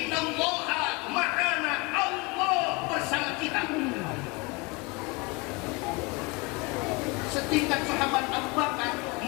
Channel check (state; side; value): quieter; right; 26.6 dB